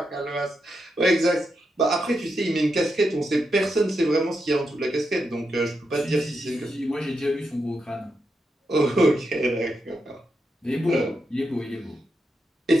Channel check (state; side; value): normal; both; correlation 0.85